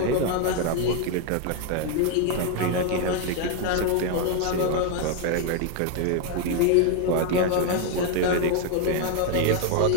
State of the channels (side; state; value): both; different; correlation 0.01